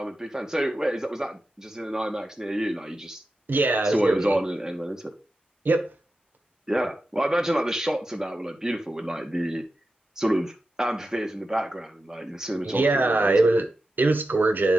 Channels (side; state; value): both; normal; correlation 0.91